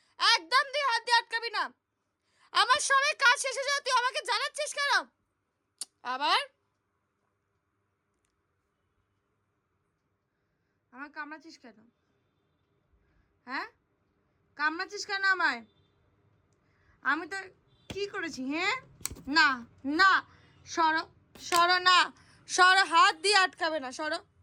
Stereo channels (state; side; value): identical; both; correlation 1.00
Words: একদম দিয়ে হাত দিয়ে আটকাবি না। আমার সবাই কাজ শেষে যাও, তুই আমাকে জানাচ্ছিস কেন আবার? আমার কামড়াচ্ছিস কেন? হ্যাঁ কামড়াচ্ছিস কেন আমায়? আমি তো কি করেছি? হ্যাঁ না না, সরো সরো, না সরো, হাত দিয়ে আটকাবে না, সরো।